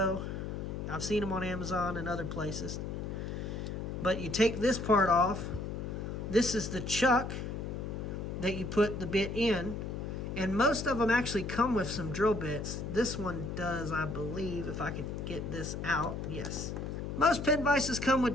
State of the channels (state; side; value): noise; left; hum, 5 dB below the sound